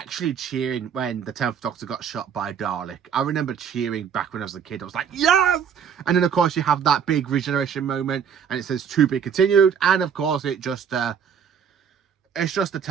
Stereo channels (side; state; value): left; quieter; 7.6 dB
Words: cheering when the 10th Doctor got shot by a Dalek. I remember cheering back when I was a kid. I was like, yes! And then, of course, you have that big regeneration moment, and it says to be continued. And, of course, it's just the